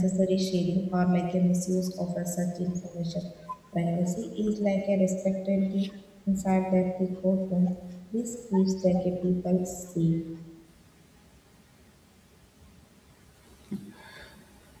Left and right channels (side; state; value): both; identical; correlation 1.00